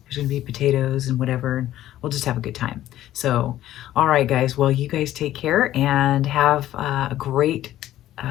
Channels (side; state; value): right; quieter; 13.4 dB